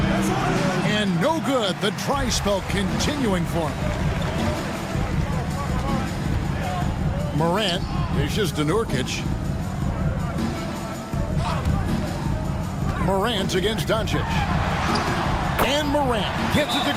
And no good. The dry spell continuing for him. Morant dishes to Nurkic. Morant against Doncic. And Morant gets it to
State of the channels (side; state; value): both; identical; correlation 1.00